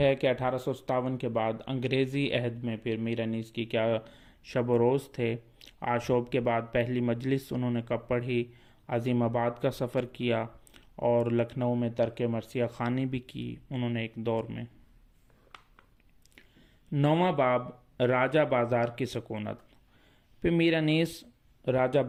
کہ 1857 کے بعد انگریزی عہد میں پھر میر انیس کی کیا شب و روز تھے۔ آشوب کے بعد پہلی مجلس انہوں نے کب پڑھی، عظیم آباد کا سفر کیا، اور لکھنؤ میں ترک مرثیہ خوانی بھی کی انہوں نے ایک دور میں۔ 9واں باب راجہ بازار کی سکونت۔ پھر میر انیس راجہ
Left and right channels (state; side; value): identical; both; correlation 1.00